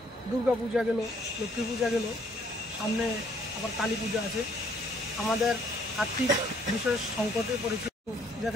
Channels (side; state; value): both; normal; correlation 0.64